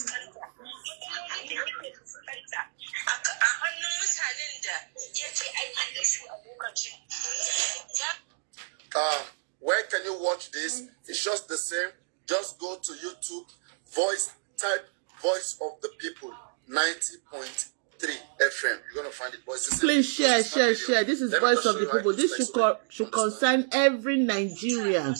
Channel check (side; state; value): left; silent; digital silence